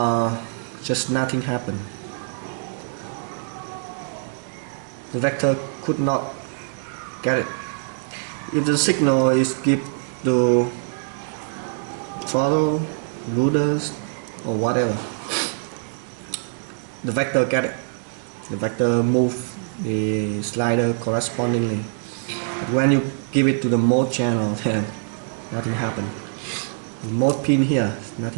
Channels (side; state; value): left; silent; digital silence